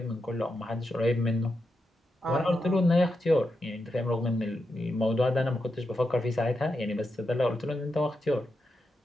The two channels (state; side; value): normal; both; correlation 0.87